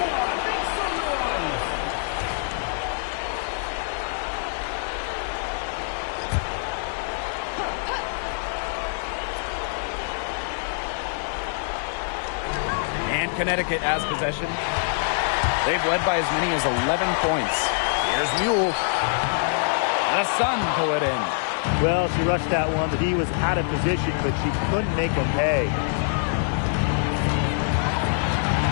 And Connecticut has possession. They've led by as many as 11 points. Here's Mule. The Sun pull it in. Well, she rushed that one. The D was out of position, but she couldn't make them pay.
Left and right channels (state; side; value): silent; right; 62 dB below the other